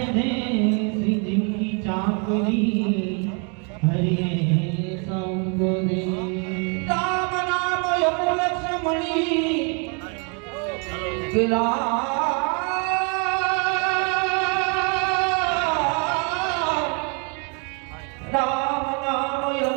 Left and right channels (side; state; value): left; quieter; 36.2 dB